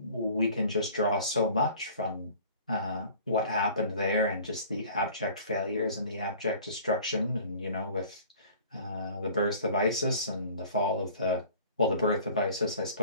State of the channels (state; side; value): inverted; both; correlation -0.47